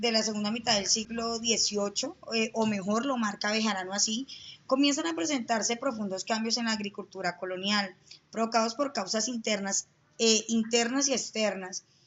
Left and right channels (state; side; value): identical; both; correlation 1.00